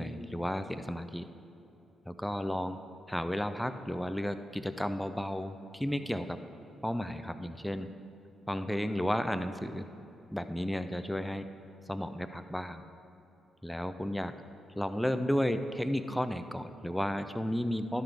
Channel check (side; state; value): both; normal; correlation 0.96